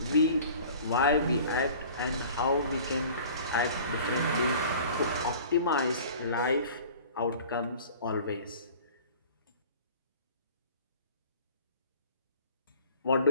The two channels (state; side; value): inverted; both; correlation -0.45